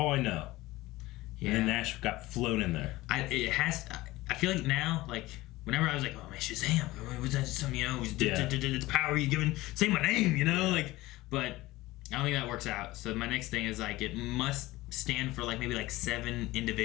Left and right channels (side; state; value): right; quieter; 18.7 dB